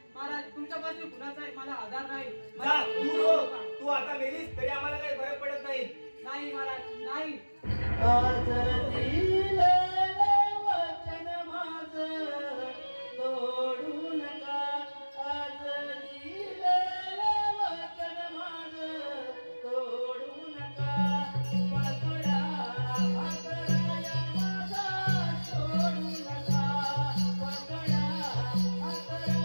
महाराज, तुमच्यापासून कुणाचा मला आधार नाही. तू आता मेलीस तरी आम्हाला काही फरक पडत नाही. नाही महाराज, नाही. आज दिलेलं वचन माझं तोडू नका. आज दिलेलं वचन माझं तोडू नका. पकडा हातराया माझा सोडू नका. पकडा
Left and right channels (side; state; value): both; inverted; correlation -1.00